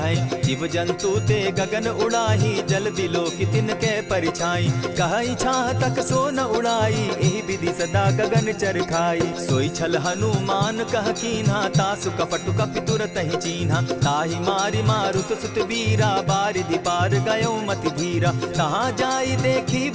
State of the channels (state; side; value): identical; both; correlation 1.00